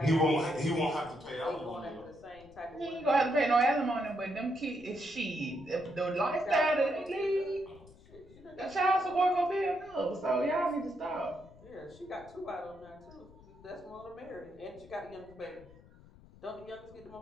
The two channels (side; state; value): left; noise; rumble, 23 dB below the sound